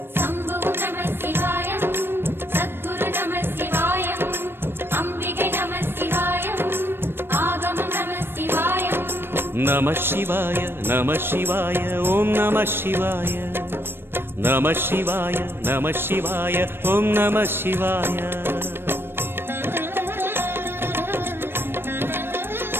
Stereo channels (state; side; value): late; left; 0.11 ms